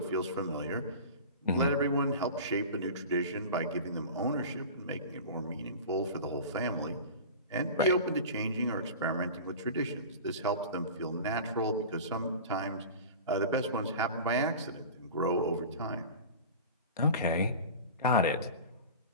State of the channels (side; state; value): both; inverted; correlation -0.34